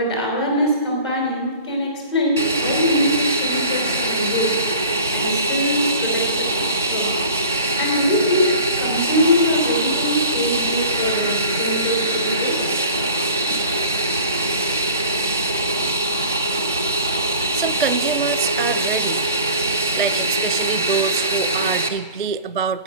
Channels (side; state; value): both; inverted; correlation -0.43